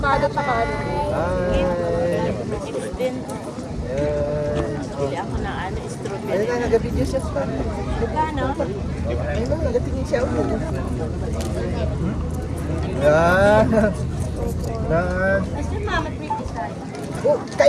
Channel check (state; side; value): identical; both; correlation 1.00